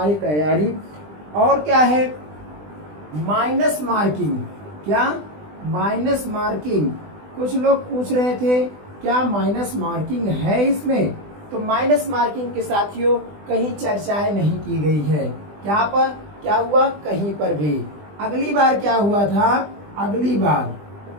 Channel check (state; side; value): late; left; 20 ms